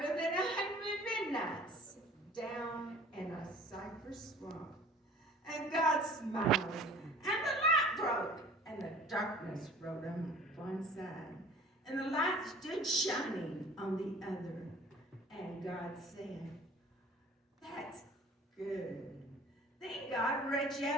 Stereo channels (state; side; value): normal; both; correlation 0.47